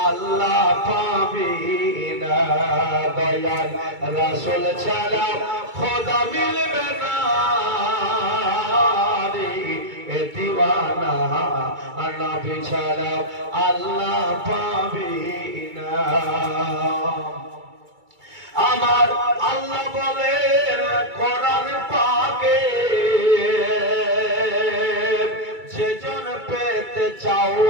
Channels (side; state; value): left; late; 2.3 ms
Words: আল্লাহ পাবি না, দয়াল রাসূল ছাড়া খোদা মিলবে না রে দিওয়ানা, নবী ছাড়া আল্লাহ পাবি না। আমার আল্লাহ বলেন কোরআন পাকে, যেজন পেতে চাও